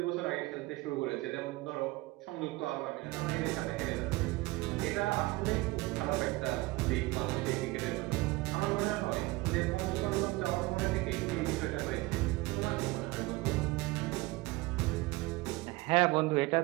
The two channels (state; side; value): quieter; left; 21.3 dB